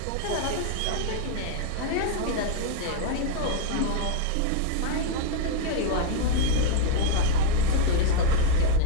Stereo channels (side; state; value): both; different; correlation 0.00